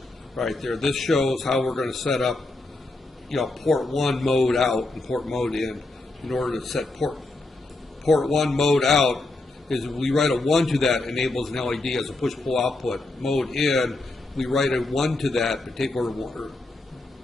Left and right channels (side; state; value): right; quieter; 3.0 dB